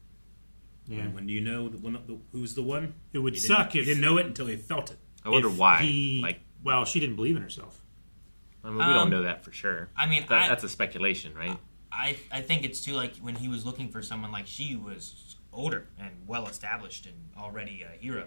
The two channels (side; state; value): both; inverted; correlation -1.00